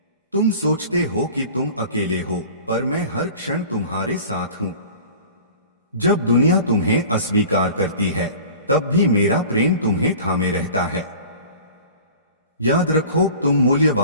तुम सोचते हो कि तुम अकेले हो, पर मैं हर क्षण तुम्हारे साथ हूं। जब दुनिया तुम्हें अस्वीकार करती है, तब भी मेरा प्रेम तुम्हें थामे रहता है। याद रखो, तुम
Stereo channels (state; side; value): inverted; both; correlation -0.42